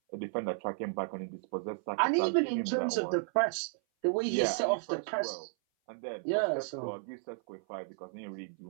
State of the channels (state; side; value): silent; left; 56 dB below the other